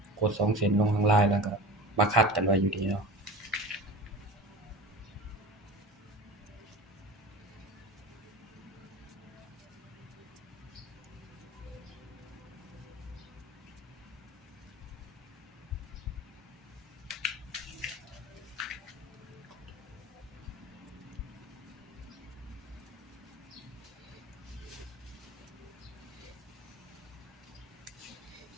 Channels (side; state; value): both; normal; correlation 0.35